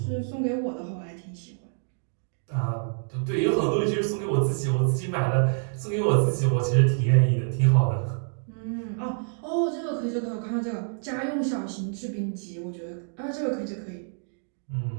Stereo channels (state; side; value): silent; left; digital silence